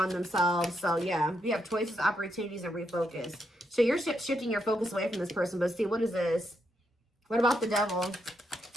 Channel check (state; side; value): normal; both; correlation 0.80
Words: themselves. So, yeah, we have choices, opportunities, and refocus. So, you're shifting your focus away from this person. But see, what is this? What about the devil?